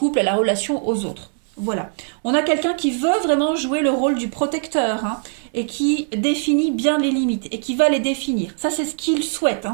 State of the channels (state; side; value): silent; left; 64 dB below the other